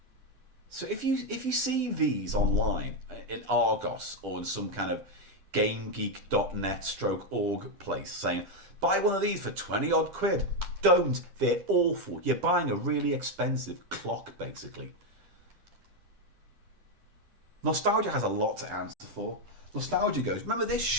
So if you see these online in Argos or in some kind of GameGeek.net/org place saying, buy one of these for 20 odd quid, don't. They're awful. You're buying a really expensive clock, basically. Nostalgia has a lot to answer for. Nostalgia goes, remember this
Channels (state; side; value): late; left; 10 ms